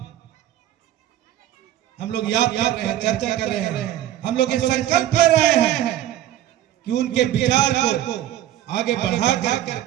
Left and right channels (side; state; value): left; quieter; 12.5 dB